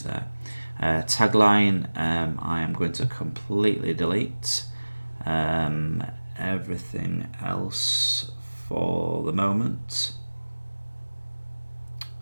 there. Tagline, I am going to completely delete everything else for the moment.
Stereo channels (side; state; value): both; inverted; correlation -1.00